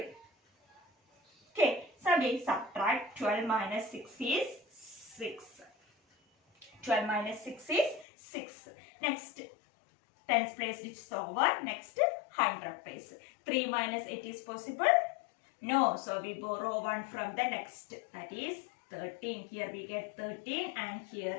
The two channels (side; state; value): right; drops out; at 8.1 s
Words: Okay. So, we subtract 12 minus 6 is 6. 12 minus 6 is 6. Next, tens place which is over. Next, 100 place. 3 minus 8 is possible? No. So, we borrow 1 from the next. That is 13. Here we get 13 and here